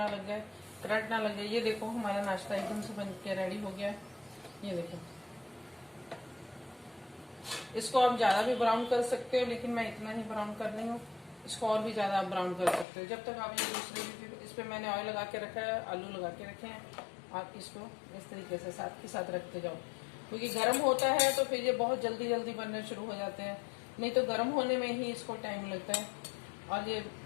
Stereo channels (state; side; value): drops out; right; at 12.9 s